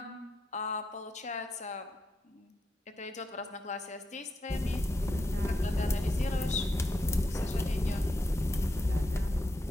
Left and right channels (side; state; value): both; normal; correlation 0.84